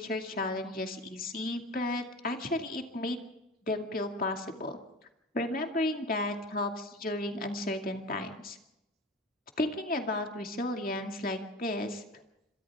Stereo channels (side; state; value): both; normal; correlation 0.34